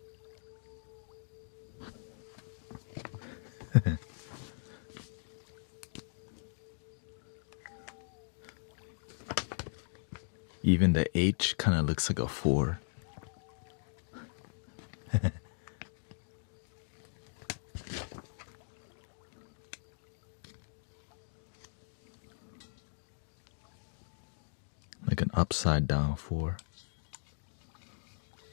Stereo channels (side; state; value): right; silent; digital silence